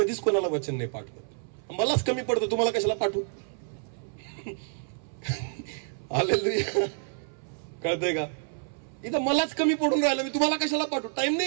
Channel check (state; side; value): silent; left; 59 dB below the other